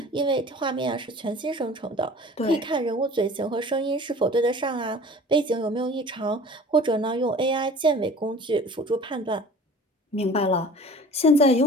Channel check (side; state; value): both; normal; correlation 0.44